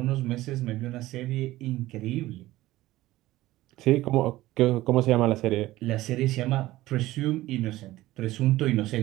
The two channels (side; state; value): left; quieter; 16.8 dB